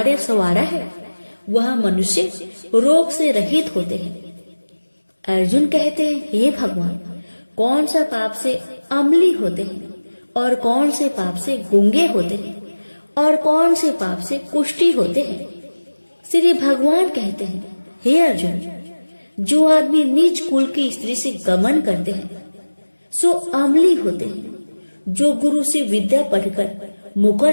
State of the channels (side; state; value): both; inverted; correlation -1.00